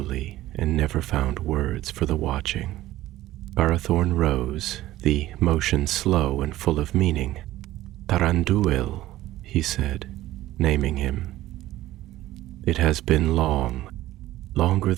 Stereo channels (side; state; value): left; quieter; 15.4 dB